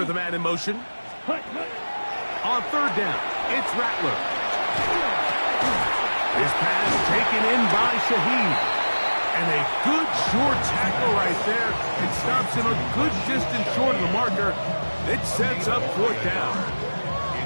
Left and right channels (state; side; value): inverted; both; correlation -1.00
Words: the man in motion. On 3rd down, it's Rattler. His pass taken in by Shaheed. And a good short tackle right there. It stops him a good distance short of the marker. It sets up 4th down.